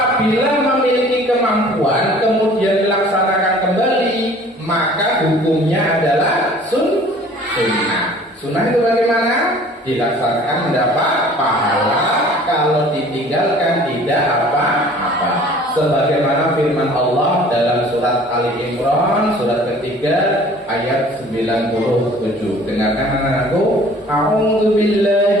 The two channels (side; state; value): both; normal; correlation 0.50